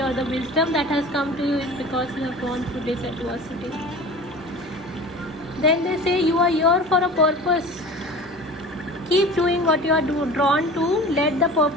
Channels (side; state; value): both; normal; correlation 0.38